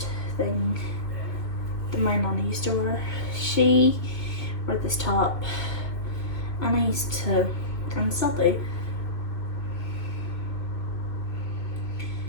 thing that my nana used to wear. She wore this top, and I used to, and still do.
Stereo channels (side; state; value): right; late; 2.3 ms